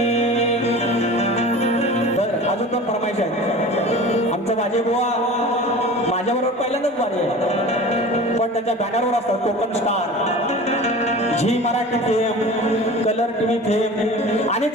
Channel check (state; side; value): normal; both; correlation 0.38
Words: तर अजून पण फरमाईश आहे. आमचं माझे बुवा माझ्याबरोबर पहिल्यांदाच वारी आहे, पण त्याच्या बॅनरवर असतात Konkan star, Zee Marathi fame, colour TV fame. आणि